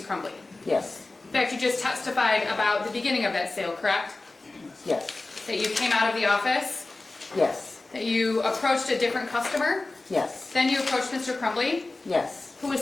Crumbley. Yes. In fact, you just testified about the beginning of that sale, correct? Yes. That you came out of the office, Yes. that you approached a different customer, Yes. then you approached Mr. Crumbley, Yes. who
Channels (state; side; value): quieter; right; 3.2 dB